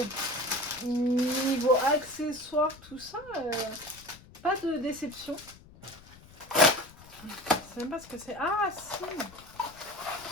accessoires, tout ça, pas de déception. Je sais même pas ce que c'est. Ah, si!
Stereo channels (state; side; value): noise; left; rumble, 22 dB below the sound